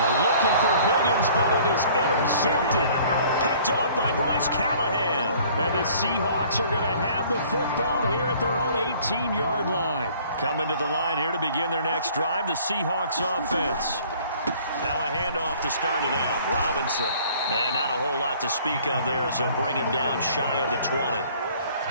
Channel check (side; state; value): both; inverted; correlation -0.54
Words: looking for Higgins, but it is intercepted. Picked off by Bryce Callahan. And the Seahawks are going to have the football here at their own 18-yard line. Coming to the line here to begin their next drive, the Seahawks offense. Now a handoff to start it out. Robinson. And not a whole lot to speak of there, as they'll bring him down shy of the 20.